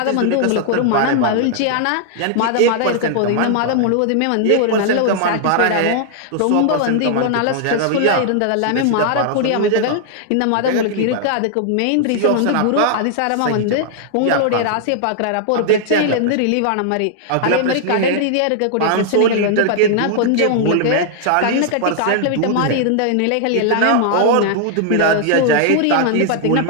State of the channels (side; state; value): both; different; correlation -0.01